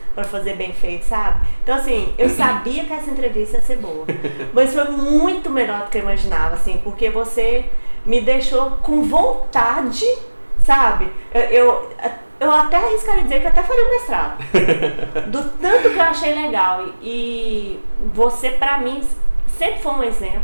pra fazer bem feito, sabe? Então, assim, eu sabia que essa entrevista ia ser boa. Mas foi muito melhor do que eu imaginava, assim, porque você me deixou com vontade, sabe? Eu até arriscaria dizer que eu até faria um mestrado. Do tanto que eu achei legal. E você, pra mim... sempre foi um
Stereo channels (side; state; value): both; inverted; correlation -1.00